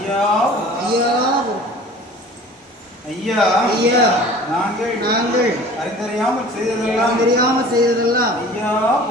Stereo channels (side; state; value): both; normal; correlation 0.45